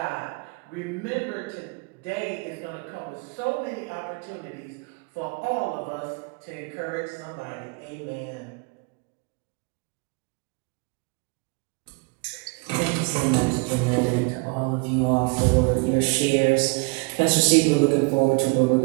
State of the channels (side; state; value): left; quieter; 30.9 dB